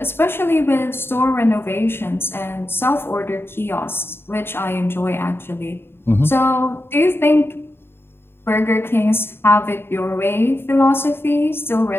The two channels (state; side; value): late; right; 0.11 ms